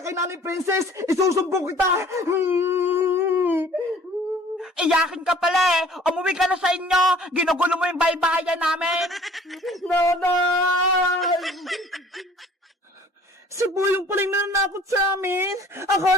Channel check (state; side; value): normal; both; correlation 0.52